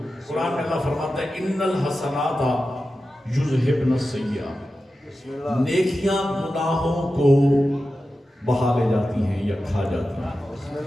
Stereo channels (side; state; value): both; normal; correlation 0.92